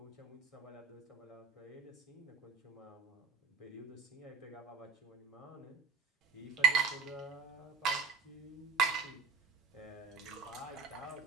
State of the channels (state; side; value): quieter; left; 5.7 dB